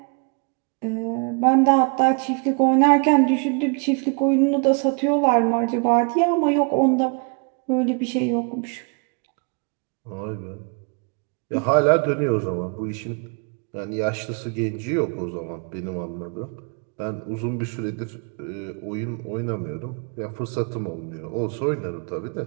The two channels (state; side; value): quieter; left; 35.2 dB